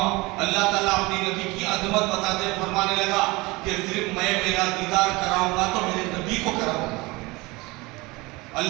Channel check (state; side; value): quieter; left; 23.2 dB